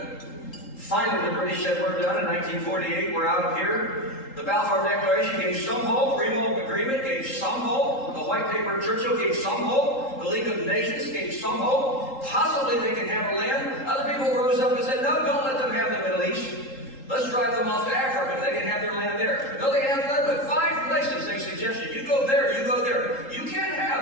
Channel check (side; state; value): right; late; 3.8 ms